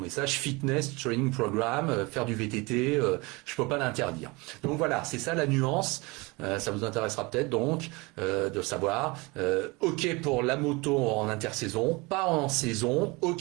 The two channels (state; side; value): quieter; left; 25.4 dB